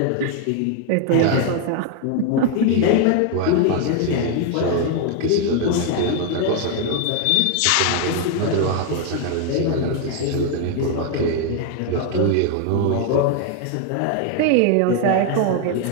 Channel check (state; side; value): different; both; correlation 0.01